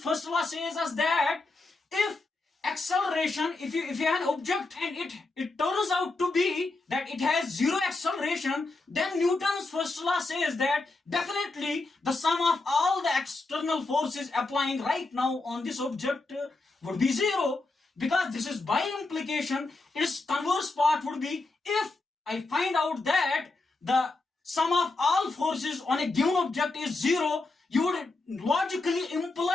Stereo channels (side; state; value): right; quieter; 3.3 dB